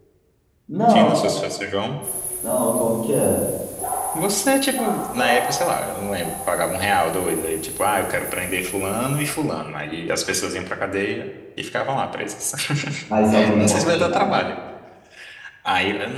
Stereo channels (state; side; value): identical; both; correlation 1.00